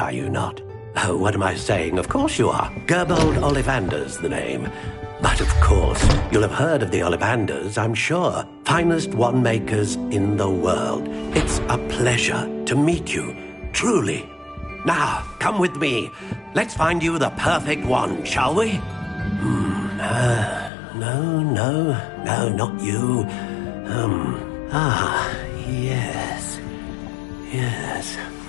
you not? Oh, what am I saying? Of course you are. Gerbold Ollivander's the name. But of course, you'll have heard of the Ollivanders, I'm sure. Finest wand makers in the world. It's a pleasure to meet you, truly. Now, come with me. Let's find you the perfect wand, shall we? No, not you. Yes.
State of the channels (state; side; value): drops out; right; at 20.7 s